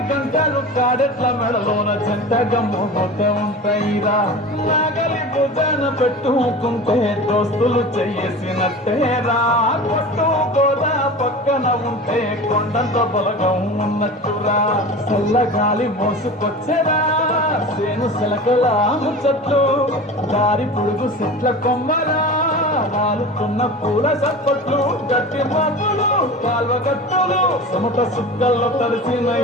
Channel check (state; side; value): normal; both; correlation 0.33